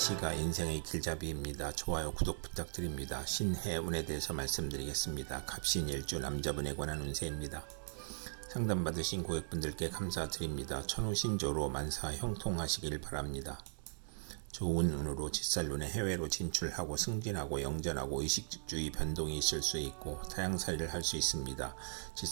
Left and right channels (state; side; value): silent; left; digital silence